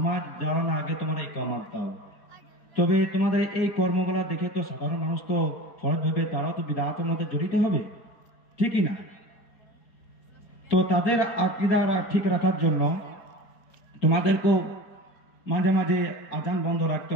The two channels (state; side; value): late; right; 4.3 ms